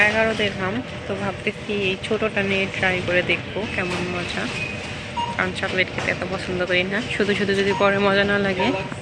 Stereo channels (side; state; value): both; identical; correlation 1.00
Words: 11 দিরহাম। তো ভাবতেছি এই ছোটটা নিয়ে ট্রাই করে দেখবো কেমন মজা, কারণ চকলেট খেতে এত পছন্দ করি না। শুধু শুধু যদি পরে মজা না লাগে